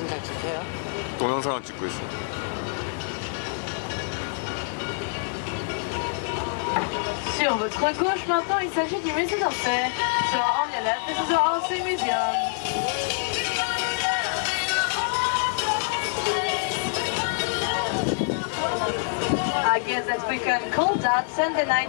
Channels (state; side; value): silent; right; digital silence